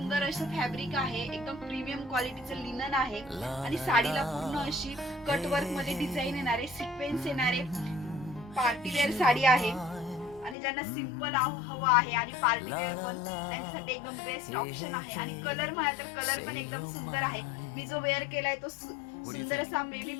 असं फॅब्रिक आहे, एकदम प्रीमियम क्वालिटीचं लिनन आहे आणि साडीला पूर्ण अशी कट वर्क मध्ये डिझाईन येणारे, सिक्वेन्स येणारे पार्टी वेअर साडी आहे. आणि ज्यांना सिंपल हवं आहे आणि पार्टी वेअर पण त्यांच्यासाठी एकदम बेस्ट ऑप्शन आहे. आणि कलर म्हणाल तर कलर पण एकदम सुंदर आहे. मी जो वेअर केलाय तो सुंदर असा बेबी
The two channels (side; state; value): right; drops out; at 10.6 s